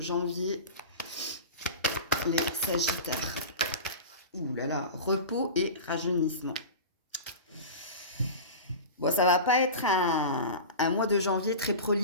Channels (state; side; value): inverted; both; correlation -0.30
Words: Les Sagittaires. Ouh là là, repos et rajeunissement. Bon, ça va pas être un mois de janvier très